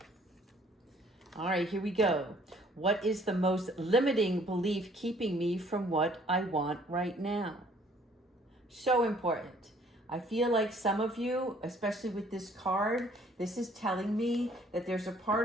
All right, here we go. What is the most limiting belief keeping me from what I want right now? So important. I feel like some of you, especially with this card, this is telling me that there's a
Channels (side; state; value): both; normal; correlation 0.59